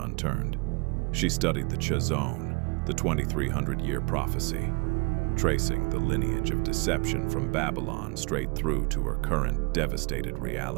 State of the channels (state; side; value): quieter; left; 30.1 dB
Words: She studied the Chazon, the 2300-year prophecy, tracing the lineage of deception from Babylon straight through to her current devastated